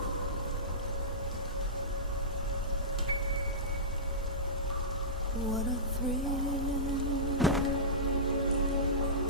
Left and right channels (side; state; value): both; normal; correlation -0.18